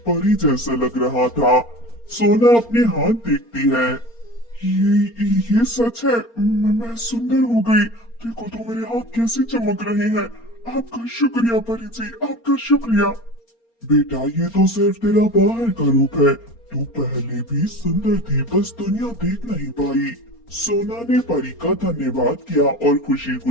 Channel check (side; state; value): right; late; 4.3 ms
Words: परी जैसा लग रहा था। सोना अपने हाथ देखती है। ये सच है, मैं सुंदर हो गई। देखो तो मेरे हाथ कैसे चमक रहे हैं। आपका शुक्रिया परी जी, आपका शुक्रिया। बेटा, ये तो सिर्फ तेरा बाहर का रूप है। तू पहले भी सुंदर थी, बस दुनिया देख नहीं पाई। सोना ने परी का धन्यवाद किया और खुशी